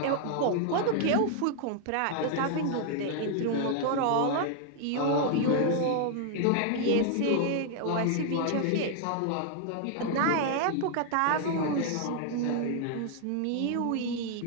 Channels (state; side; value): different; both; correlation 0.00